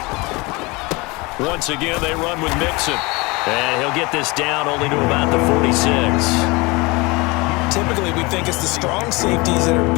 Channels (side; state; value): right; quieter; 25.1 dB